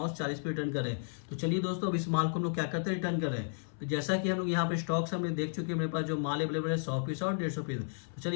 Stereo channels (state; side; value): silent; right; 56 dB below the other